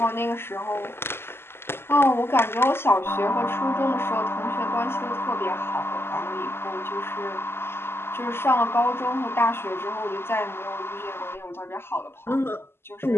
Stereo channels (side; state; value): right; late; 0.12 ms